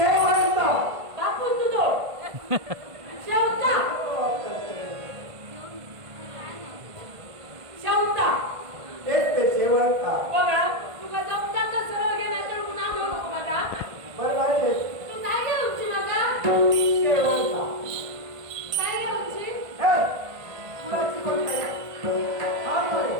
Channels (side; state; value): left; late; 1.5 ms